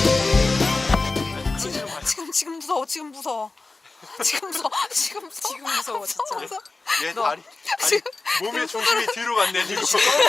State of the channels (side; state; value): right; quieter; 3.5 dB